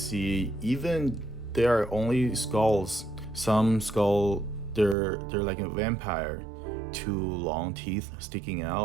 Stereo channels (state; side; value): drops out; left; at 5.0 s